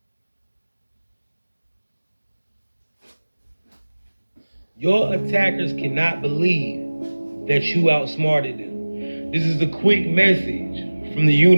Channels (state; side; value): inverted; both; correlation -1.00